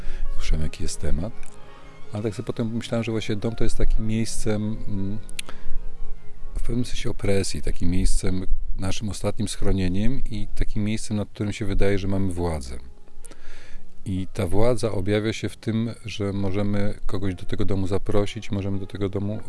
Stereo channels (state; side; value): identical; both; correlation 1.00